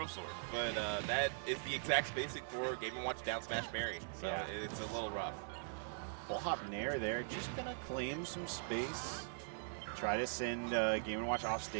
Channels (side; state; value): left; silent; digital silence